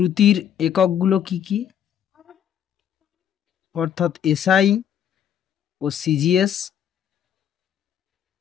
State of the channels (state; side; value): quieter; right; 9.3 dB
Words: এককগুলো কি কি, অর্থাৎ এসআই ও সিজিএস,